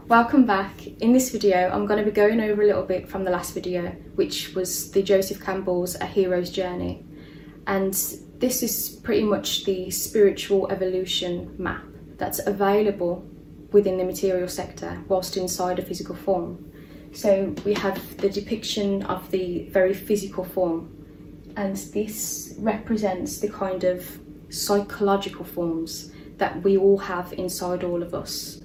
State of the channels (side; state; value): both; identical; correlation 1.00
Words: Welcome back. In this video I'm going to be going over a little bit from the last video, which was the Joseph Campbell's A Hero's Journey, and this is pretty much the spiritual evolution map that's available within the material sector whilst inside a physical form. So we have the depiction of the very physical form, and this represents the kind of psychological forms that we all have inside all of us.